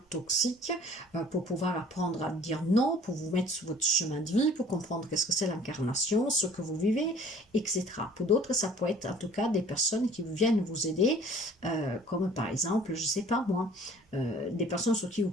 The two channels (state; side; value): normal; both; correlation 0.52